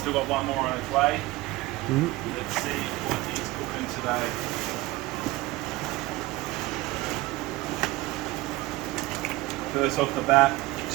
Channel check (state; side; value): quieter; left; 19.5 dB